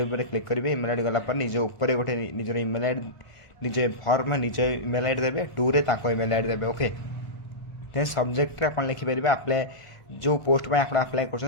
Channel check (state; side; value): late; right; 1.4 ms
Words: क्लिक करेंगे ईमेल आईडी गलापर निज उपर गोटे निजर ईमेल आईडी निजे फर्म निज ईमेल आईडी देवे 2 रे ईमेल आईडी देवे ओके देन सब्जेक्ट आप लिखिपारे अप्लाई जो पोस्ट में आप अप्लाई